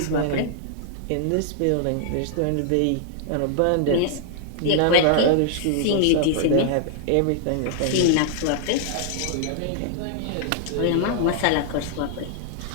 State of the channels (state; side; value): different; both; correlation -0.01